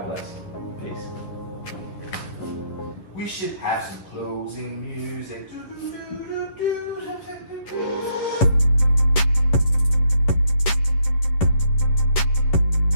bless. Peace. We should have some closing music.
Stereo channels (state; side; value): late; right; 11 ms